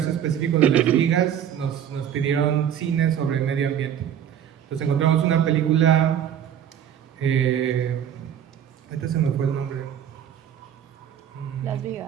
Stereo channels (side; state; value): left; quieter; 9.6 dB